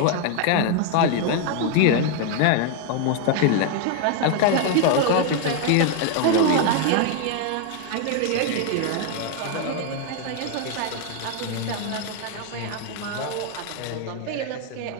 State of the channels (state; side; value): different; both; correlation 0.01